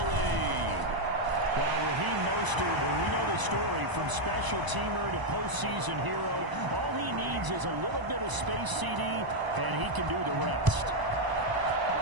lead. Well, Raheem Mostert, we know the story, from special teamer to postseason hero. All he needs is a little bit of space, CD, and he can do the rest.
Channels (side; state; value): left; late; 1.0 ms